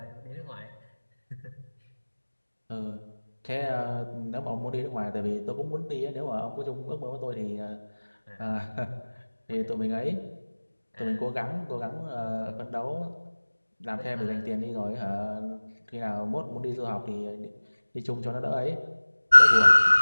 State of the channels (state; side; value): inverted; both; correlation -1.00